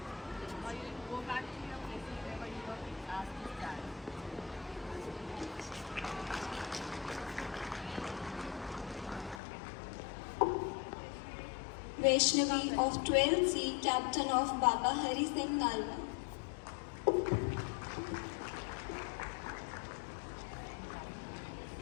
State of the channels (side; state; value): right; drops out; at 9.4 s